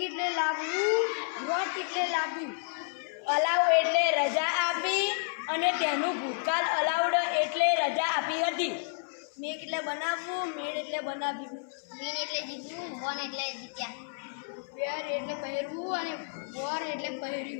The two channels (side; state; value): right; silent; 56 dB below the other